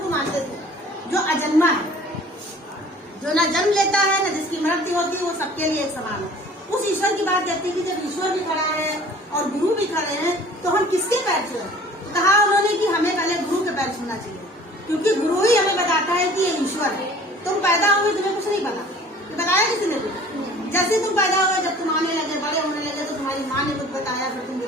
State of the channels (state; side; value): normal; both; correlation 0.48